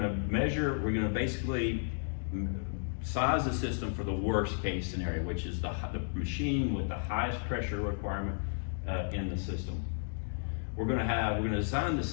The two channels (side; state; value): right; silent; digital silence